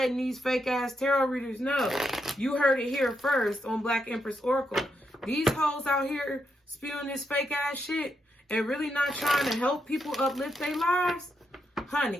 these fake ass tarot readers know. You heard it here first on Black Empress Oracle. These hoes out here spewing this fake ass shit and really not trying to help people uplift their lives.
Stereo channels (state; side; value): normal; both; correlation 0.82